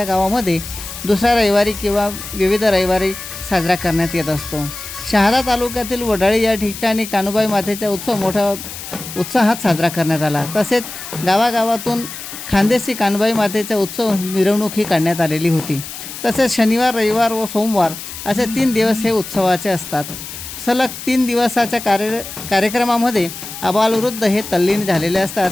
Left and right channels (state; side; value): noise; left; hiss, 11 dB below the sound